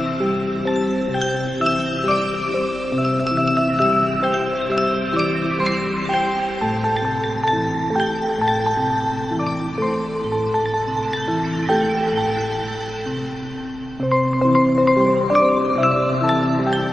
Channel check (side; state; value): right; noise; hum, 21 dB below the sound